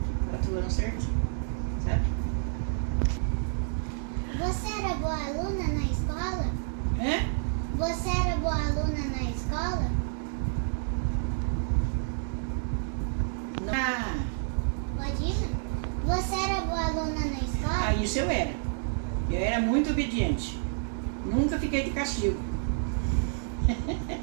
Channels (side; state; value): left; silent; digital silence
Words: 4 anos certinho, sabe? Você era boa aluna na escola? Você era boa aluna na escola? Pode ir? Você era boa aluna na escola? Isso eu era. Eu era muito obediente. Nunca fiquei de castigo.